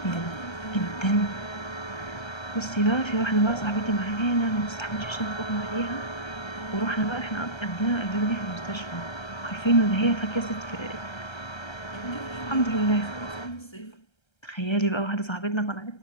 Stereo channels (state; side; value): late; right; 1.3 ms